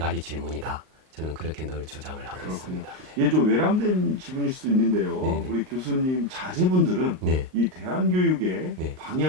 질문이다. 저는 그렇게 늘 주장을 하고 그렇군요. 있습니다. 예, 좀 외람된 질문일 수도 있는데요. 네네. 우리 교수님 자제분들은 네. 이 대안교육의 네.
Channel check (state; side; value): late; left; 38 ms